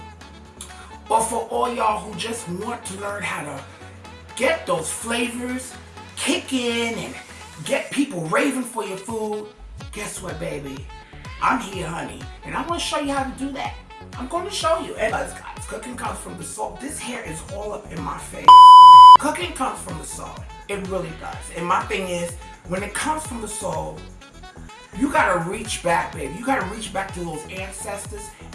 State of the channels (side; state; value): both; identical; correlation 1.00